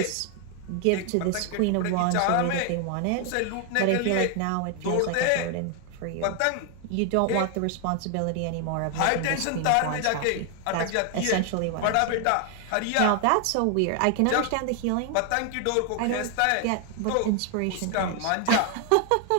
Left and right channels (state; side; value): different; both; correlation 0.00